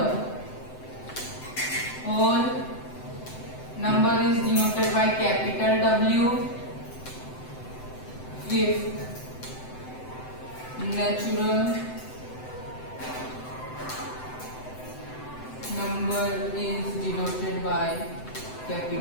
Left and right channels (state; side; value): late; right; 7.9 ms